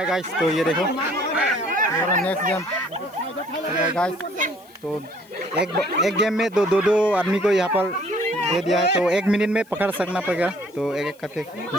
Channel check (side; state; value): left; noise; hiss, 29 dB below the sound